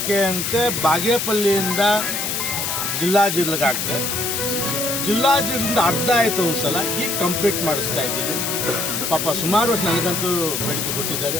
ಅಂತೆ ಬಾಗೇಪಲ್ಲಿಯಿಂದ ಜಿಲ್ಲೆಗಾಗ್ತದೆ. ಜಿಲ್ಲೆಯಿಂದ ಅರ್ಧ ಆಯಿತು ಒಂದು ಸಲ, ಈಗ ಕಂಪ್ಲೀಟ್ ಮಾಡಿಸ್ತಾ ಇದ್ದೀನಿ. ಪಾಪ ಸುಮಾರು ವರ್ಷ ನನಗಂತೂ ಬೇಡಿಕೆ ಕೊಟ್ಟಿದ್ದಾರೆ.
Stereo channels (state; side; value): noise; left; hiss, 1 dB below the sound